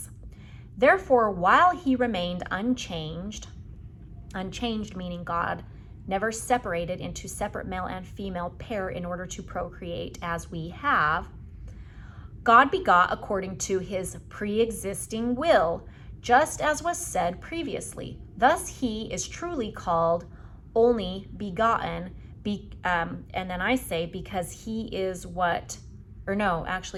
Therefore, while he remained unchanged meaning God never separated into separate male and female pair in order to procreate as we have, God begot according to his pre-existing will, just as was said previously. Thus he is truly called only begotten, and then I say because he is what, or no,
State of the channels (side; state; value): both; identical; correlation 1.00